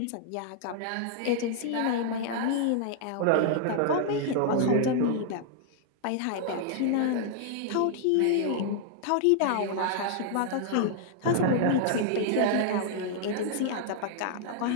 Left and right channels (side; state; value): both; different; correlation 0.00